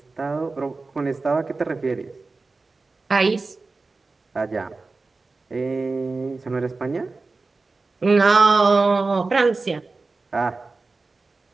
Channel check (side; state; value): left; quieter; 3.8 dB